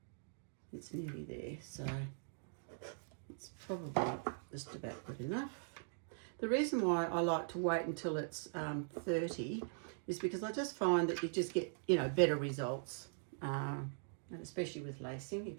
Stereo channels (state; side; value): silent; left; digital silence